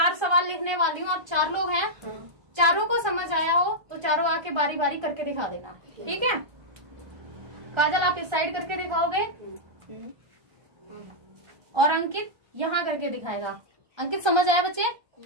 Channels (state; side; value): late; left; 1.3 ms